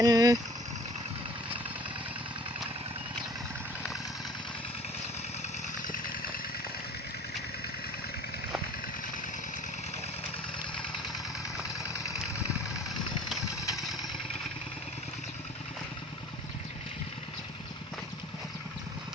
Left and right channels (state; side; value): normal; both; correlation 0.49